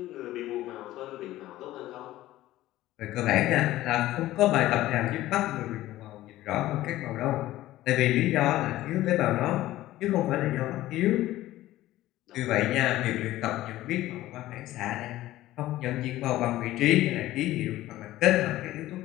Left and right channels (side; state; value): right; quieter; 15.6 dB